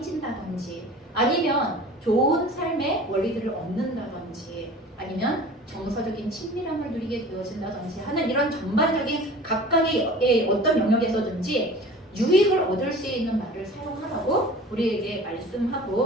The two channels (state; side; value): normal; both; correlation 0.42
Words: 아니면 좋은 삶의 원리들을 얻는다든지, 아니면 정서적인 친밀함을 누리게 되어진다든지 하는 이런 전반적인 각각의 어떤 영역에서든지 유익을 얻을 수 있는 말을 사용하라고 우리에게